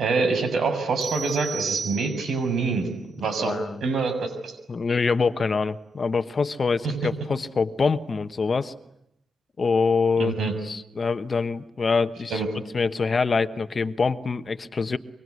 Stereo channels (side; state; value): both; normal; correlation 0.82